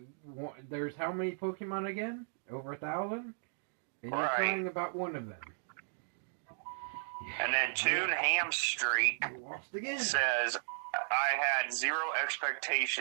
There's how many Pokemon again? Over 1,000? And Right. you're talking about one of them. And then Toon Hamstreak You lost again. says I had zero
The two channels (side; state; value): left; silent; digital silence